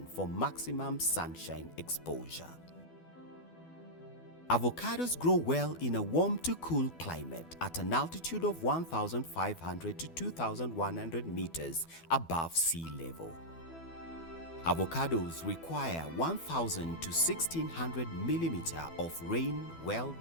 for maximum sunshine exposure. Avocados grow well in a warm to cool climate at an altitude of 1,500 to 2,100 meters above sea level. Avocados require 1,000 to 1,600 millimeters of rain well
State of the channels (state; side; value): late; right; 12 ms